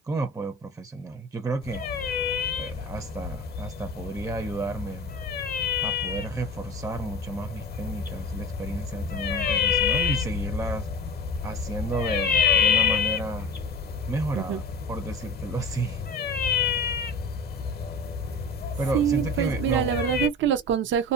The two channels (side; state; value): both; normal; correlation 0.33